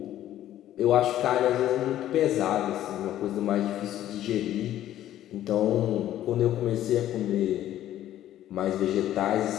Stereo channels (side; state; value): right; quieter; 12.6 dB